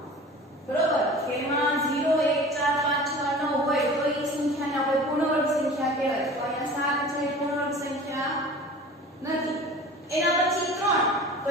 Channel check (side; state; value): both; normal; correlation 0.40